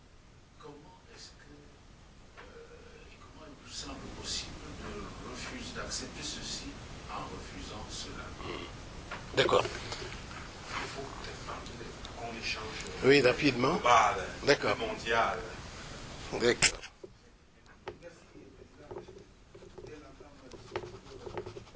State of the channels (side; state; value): both; identical; correlation 1.00